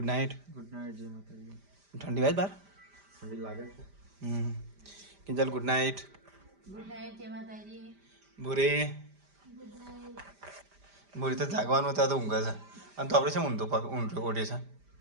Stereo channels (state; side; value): late; left; 5.0 ms